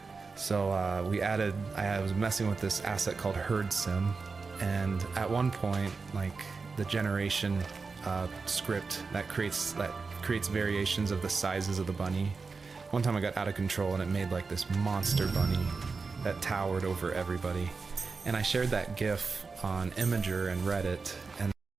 So I was messing with this asset called Herd Sim, and at one point, like the generation script that creates variations of the sizes of the bunny. One time I got out of control and it made like this monster bunny that towered over everybody. And I shared that GIF on Imager and Reddit, and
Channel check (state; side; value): quieter; left; 4.5 dB